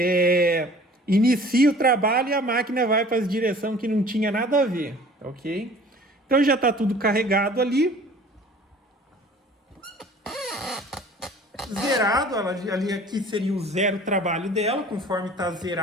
inicia o trabalho e a máquina vai para a direção que não tinha nada a ver, ok? Então já está tudo carregado ali. Zerado, ali aqui seria o zero trabalho dela, conforme está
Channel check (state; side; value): normal; both; correlation 0.48